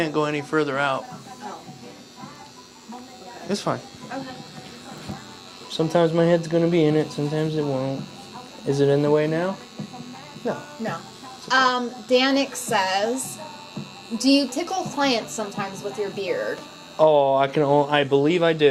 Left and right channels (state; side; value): identical; both; correlation 1.00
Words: go any further out. Oh. It's fine. Okay. Sometimes my head's gonna be in it, sometimes it won't. Is it in the way now? No. No. Danik says, do you tickle clients sometimes with your beard? Oh, I believe I